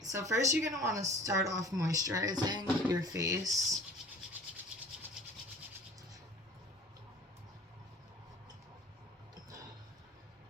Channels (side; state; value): both; normal; correlation 0.46